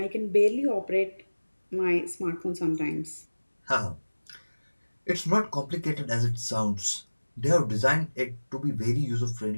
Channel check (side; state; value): both; inverted; correlation -1.00